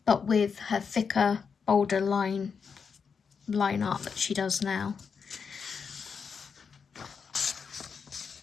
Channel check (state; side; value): quieter; right; 6.0 dB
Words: but with her thicker, bolder line art that she does now.